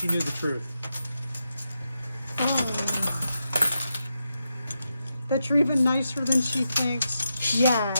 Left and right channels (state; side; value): inverted; both; correlation -0.86